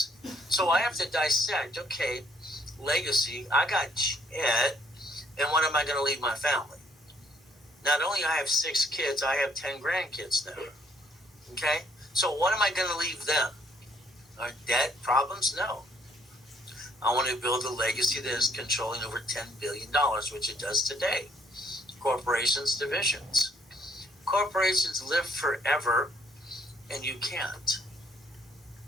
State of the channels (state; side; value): normal; both; correlation 0.66